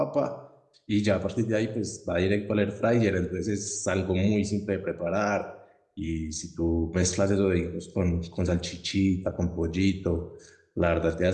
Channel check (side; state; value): both; identical; correlation 1.00